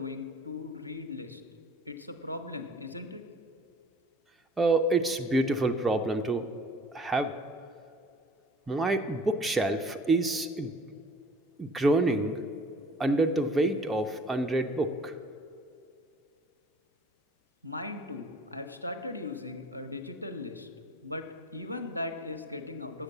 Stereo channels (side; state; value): both; normal; correlation 0.51